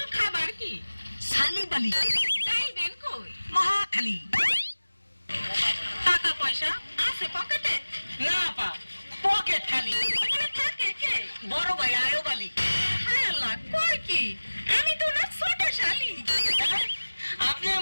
খাবার কি? সালিবালি। যাইবেন কই? মহাখালী। টাকা পয়সা আছে পকেটে? না পা, পকেট খালি। ওখানে থাকে কে? বড় ভাই আয়োবালি। হায় আল্লাহ, কই কি? আমি তো না ছোট শালি। আপনি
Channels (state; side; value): inverted; both; correlation -1.00